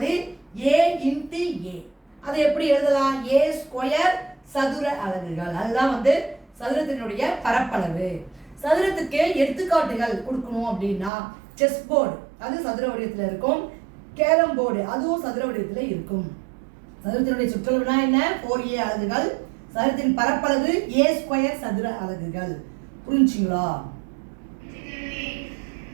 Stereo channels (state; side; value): drops out; left; at 11.1 s